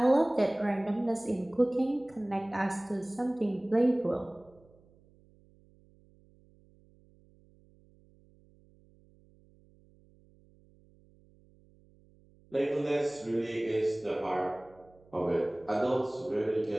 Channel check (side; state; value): right; noise; hum, 29 dB below the sound